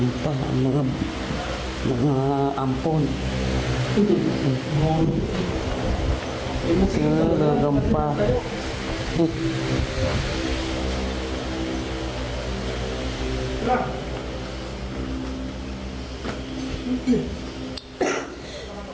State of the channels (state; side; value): identical; both; correlation 1.00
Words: pa ang mga ampon. Tulugan pa.